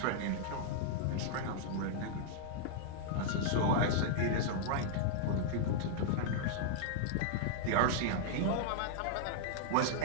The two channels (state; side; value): different; both; correlation -0.01